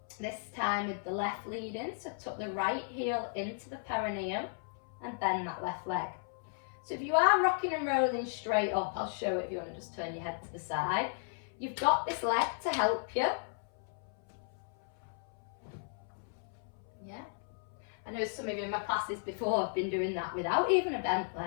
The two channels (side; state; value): right; silent; 54 dB below the other